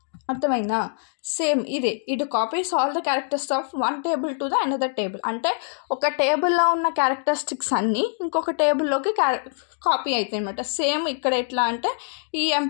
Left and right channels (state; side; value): silent; right; 63 dB below the other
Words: అర్థమైందా? Same it copies all the characters of one table to the another table. అంటే ఒక టేబుల్లో ఉన్న క్యారెక్టరిస్టిక్స్ అన్నీ ఇంకొక టేబుల్లోకి కాపీ అవుతాయి అనమాట. సేమ్ ఇక్కడ ఎట్లా అంటే